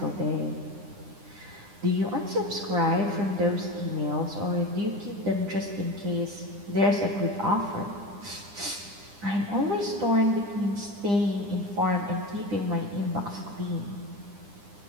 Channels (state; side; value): late; left; 9.9 ms